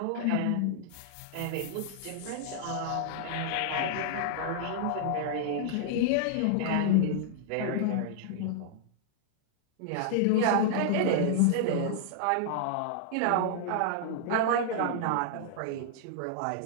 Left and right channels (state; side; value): different; both; correlation -0.01